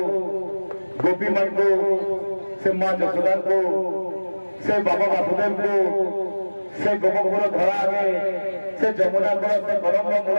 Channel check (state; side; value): inverted; both; correlation -1.00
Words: ଗୋପୀମାନଙ୍କୁ ସେ ମା ଯଶୋଦାଙ୍କୁ ସେ ବାବା ବାସୁଦେବଙ୍କୁ ସେ ଗୋପପୁର ଧରା ଆଗେ ସେ ଯମୁନା କୂଳ ସେ କଦମ୍ବ ମୂଳ